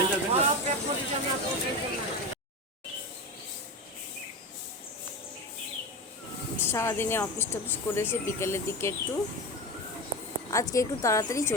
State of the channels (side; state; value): both; normal; correlation 0.24